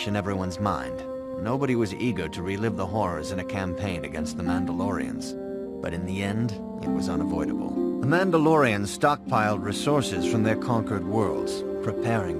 in everyone's mind. Nobody was eager to relive the horrors in a campaign against the Mandalorians. But in the end, it was unavoidable. The Mandalorians stockpiled resources from their conquered worlds, preparing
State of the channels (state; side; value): identical; both; correlation 1.00